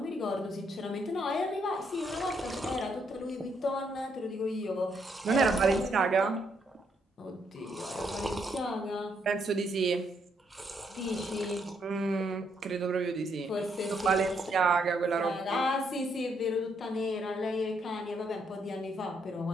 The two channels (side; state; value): both; normal; correlation 0.74